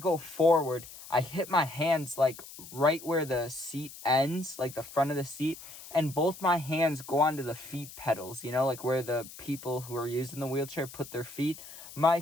forward, I hit my hands, like, right where the seat ends, like the front of the seat, and both my hands go onto the feet pedals, you know, like where the people who are using the wheelchair put their feet. My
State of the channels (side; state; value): left; noise; hiss, 15 dB below the sound